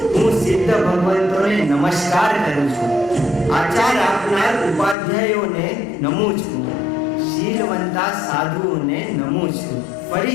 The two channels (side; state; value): right; drops out; at 5.0 s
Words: હું સિદ્ધ ભગવંતોને નમસ્કાર કરું છું. આચાર આપનાર ઉપાધ્યાયોને નમું છું. શીલવંતા સાધુઓને નમું છું.